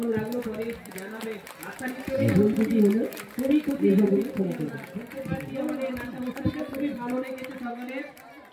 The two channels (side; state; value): both; identical; correlation 1.00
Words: লাগলো পরে জানাবে। আশা নিশ্চয়ই খুবই খুশি বুঝতে পারছি আমাদের নাট্য অনুষ্ঠানটা খুবই ভালো লেগেছে সকলের।